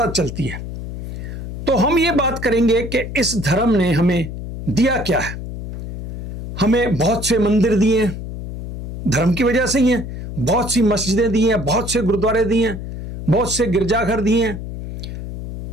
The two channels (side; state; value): left; noise; hum, 8 dB below the sound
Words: चलती है। तो हम ये बात करेंगे कि इस धर्म ने हमें दिया क्या है। हमें बहुत से मंदिर दिए हैं, धर्म की वजह से ही हैं। बहुत सी मस्जिदें दी हैं, बहुत से गुरुद्वारे दिए हैं, बहुत से गिरजाघर दिए हैं,